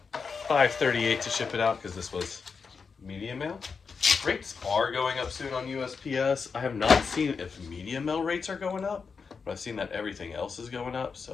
$5.38 to ship it out because this was media mail. Rates are going up soon on USPS. I have not seen if media mail rates are going up, but I've seen that everything else is going up,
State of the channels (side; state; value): right; quieter; 5.3 dB